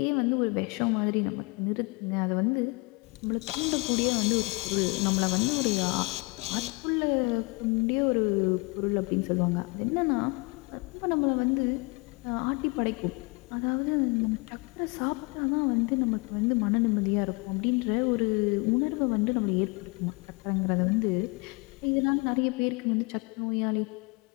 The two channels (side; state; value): right; quieter; 27.8 dB